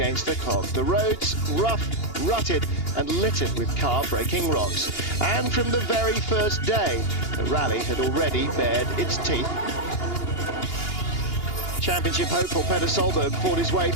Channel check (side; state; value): right; late; 2.8 ms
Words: the clock. The roads rough, rutted and littered with car-breaking rocks. And from the very first day, the rally had already bared its teeth. Championship hopeful Peter Solberg fought his way